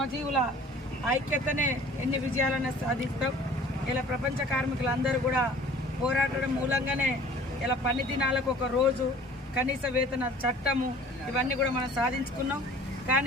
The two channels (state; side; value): normal; both; correlation 0.49